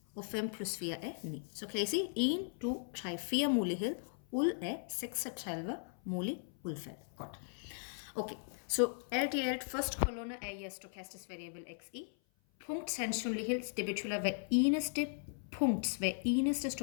Og 5 plus 4 er 9. Så kan I se 1, 2, 3, 4 muligheder ud af 36 mulige udfald. Godt. Okay, så alt i alt, første kolonne er jeres stochastisk variable xi. Punktsandsynlighed, det betyder hver eneste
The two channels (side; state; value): right; silent; 53 dB below the other